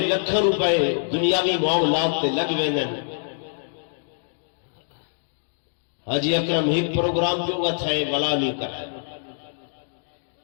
لکھوں روپے دنیاوی معاملات تے لگ ویندن. حاجی اکرم ایک پروگرام جو گا تھا ولا نہیں کرائے.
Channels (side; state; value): right; silent; digital silence